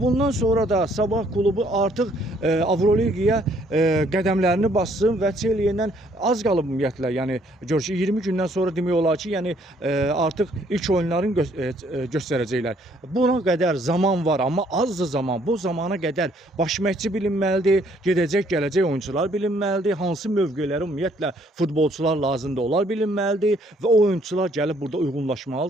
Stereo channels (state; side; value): normal; both; correlation 0.65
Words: sonra da Sabah klubu artıq Avroliqaya qədəmlərini bassın və Çelye'dən az qalıb ümumiyyətlə. Yəni gör ki 20 gündən sonra demək olar ki, yəni artıq ilk oyunlarını göstərəcəklər. Buna qədər zaman var, amma azdır zaman. Bu zamana qədər baş məşqçi bilinməlidir, gedəcək, gələcək oyuncular bilinməlidir, hansı mövqelərə ümumiyyətlə futbolçular lazımdır, onlar bilinməlidir və o oyuncular gəlib burada